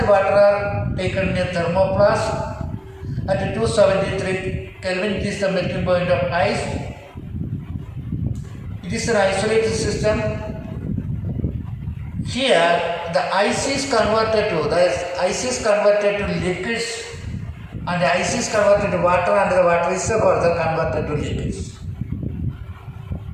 water are taken in a thermoplast at 273 Kelvin, it is the melting point of ice. It is an isolated system. Here the ice is converted to liquids and the ice is converted to water and the water is further converted to liquids.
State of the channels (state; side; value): identical; both; correlation 1.00